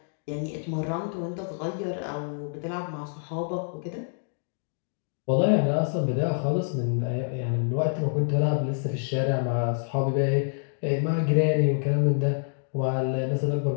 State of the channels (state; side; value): silent; right; digital silence